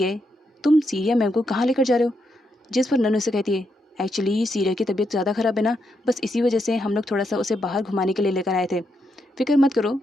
तुम सीरिया मैम को कहाँ लेकर जा रहे हो? जिस पर नन्नू से कहती है एक्चुअली सीरिया की तबीयत ज़्यादा ख़राब है ना, बस इसी वजह से हम लोग थोड़ा सा उसे बाहर घुमाने के लिए लेकर आए थे। फिक्र मत करो,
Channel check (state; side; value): normal; both; correlation 0.81